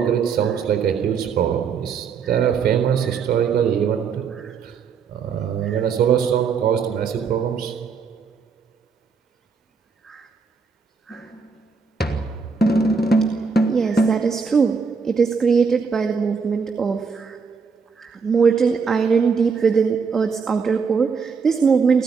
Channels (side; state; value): left; quieter; 5.6 dB